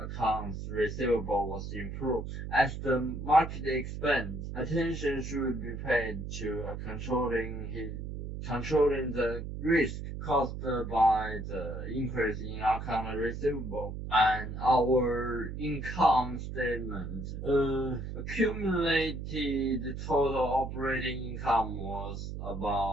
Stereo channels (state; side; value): noise; right; hum, 7 dB below the sound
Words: receivable was improved. As the market expands, attention should be paid to controlling the risk caused by the increase in account receivable. And our income statement accumulated total operating income was